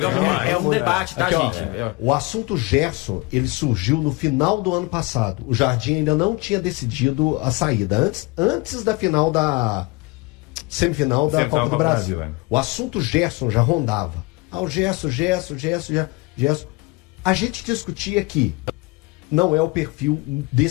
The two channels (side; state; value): right; quieter; 25.0 dB